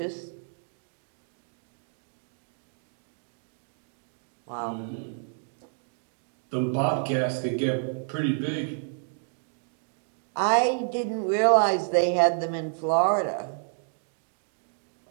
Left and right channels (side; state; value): left; silent; 58 dB below the other